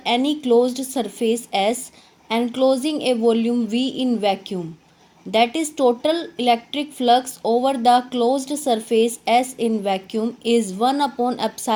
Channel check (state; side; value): identical; both; correlation 1.00